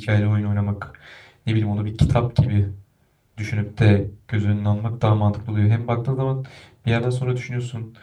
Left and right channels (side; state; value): both; identical; correlation 1.00